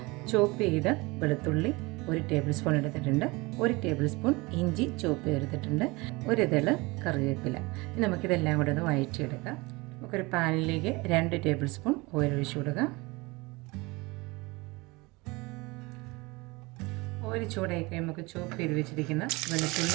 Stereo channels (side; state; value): left; quieter; 24.2 dB